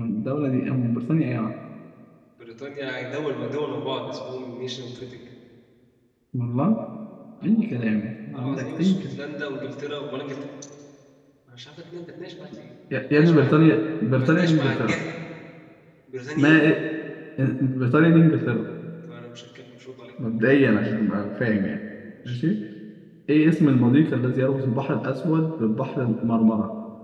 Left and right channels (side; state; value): both; identical; correlation 1.00